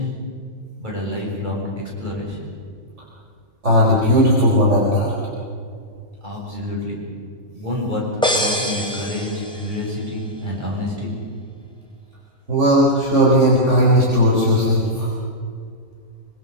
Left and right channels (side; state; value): both; normal; correlation -0.10